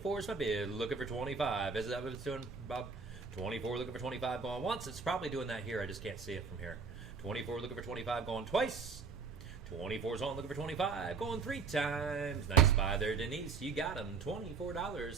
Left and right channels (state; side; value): quieter; left; 5.3 dB